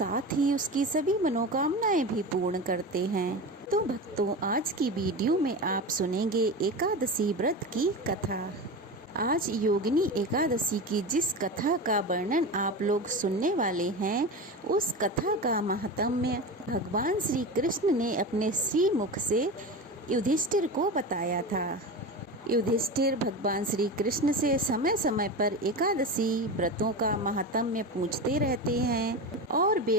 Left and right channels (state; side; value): normal; both; correlation 0.25